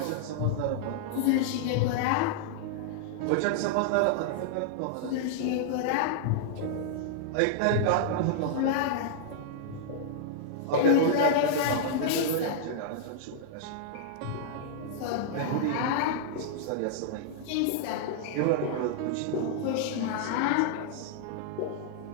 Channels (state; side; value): different; both; correlation -0.01